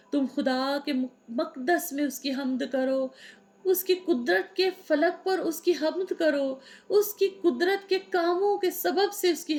तुम खुदा के मक़दस में उसकी हम्द करो, उसकी कुदरत के फलक पर उसकी हम्द करो, उसकी कुदरत के कामों के सबब से उसकी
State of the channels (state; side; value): identical; both; correlation 1.00